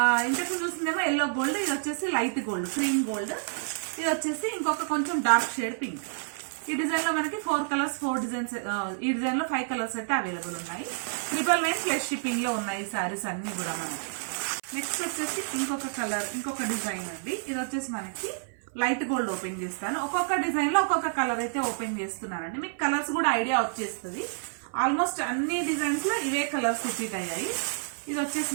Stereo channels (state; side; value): silent; left; 57 dB below the other